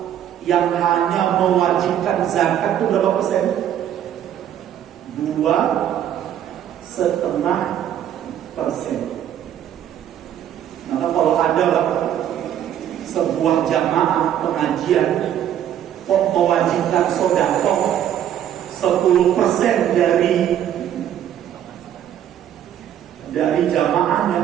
yang hanya mewajibkan zakat itu berapa persen? 2,5%. Maka kalau ada sebuah jamaah pengajian kok mewajibkan sedekah 10% dari jamaahnya,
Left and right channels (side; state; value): left; quieter; 10.5 dB